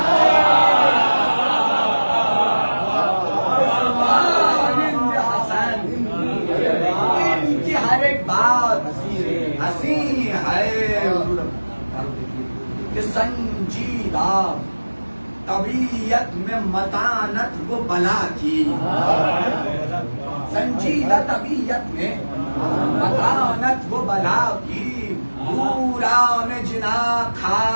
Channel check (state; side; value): inverted; both; correlation -1.00